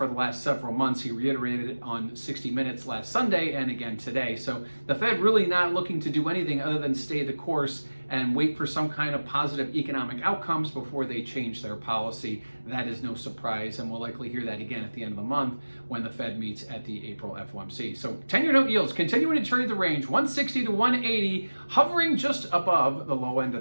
the last several months. He reiterated it on 60 Minutes last Sunday and again today. So the Fed really not looking to do anything other than stay the course and wait for some kind of positive economic outcomes before they change their policy. That is no surprise, and we'll likely hear that again at the end of the month when the Fed meets at the April FOMC. So 10-year note yields continuing to trade the range 160 to 180, hovering just above the low end of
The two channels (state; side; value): inverted; both; correlation -1.00